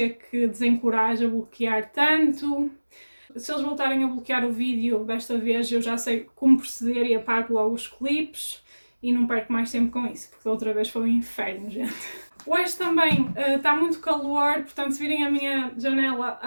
que desencoraje a bloquear tanto. Se eles voltarem a bloquear o vídeo desta vez, eu já sei como proceder e apago logo os clipes e não perco mais tempo com isso, porque da outra vez foi um inferno, gente. Hoje também está muito calor, portanto se virem a minha janela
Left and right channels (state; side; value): inverted; both; correlation -1.00